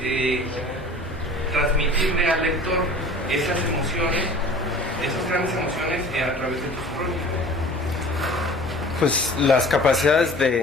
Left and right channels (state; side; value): normal; both; correlation 0.44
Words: transmitirle al lector esas emociones, esas grandes emociones a través de tus crónicas? Pues las capacidades